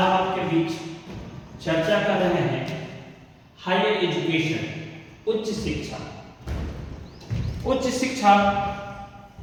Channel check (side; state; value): both; identical; correlation 1.00